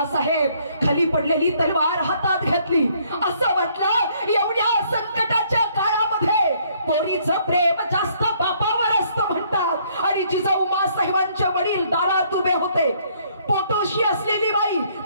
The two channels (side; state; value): both; inverted; correlation -0.65